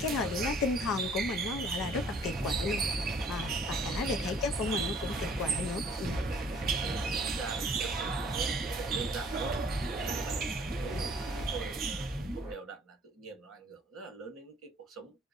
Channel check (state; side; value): normal; both; correlation 0.56